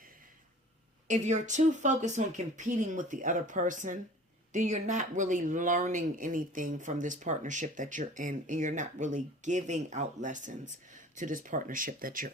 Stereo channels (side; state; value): both; normal; correlation 0.45